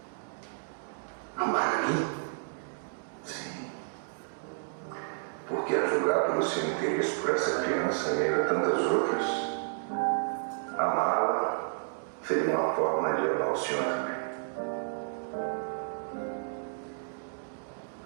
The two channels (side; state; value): left; silent; digital silence